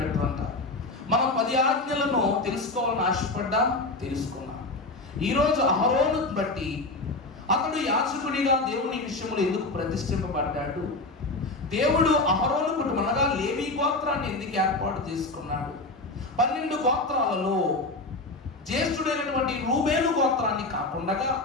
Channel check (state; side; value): quieter; right; 3.1 dB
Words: మనం 10 ఆజ్ఞలను తెలుసుకోవాలని ఆశపడ్డా తెలుసుకున్నాం. ఈరోజు అహరోను బట్టి అతడు యాజకుడిగా దేవుని విషయంలో ఎందుకు ప్రతిష్ఠింపబడ్డాడు, దేవుడు అహరోను కుటుంబం అనగా లేవీ గోత్రాన్ని ఎందుకు ఏర్పాటు చేసుకున్నాడు, 12 గోత్రాలలో జ్యేష్ఠుడైనటువంటి రూబేలు గోత్రాన్ని కాకుండా